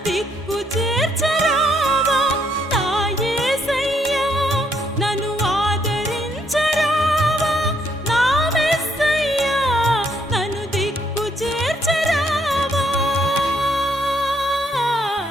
దిక్కు చేర్చరావా, నా యేసయ్యా నన్ను ఆదరించరావా, నా మెస్సయ్యా నన్ను దిక్కు చేర్చరావా.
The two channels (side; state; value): both; normal; correlation 0.72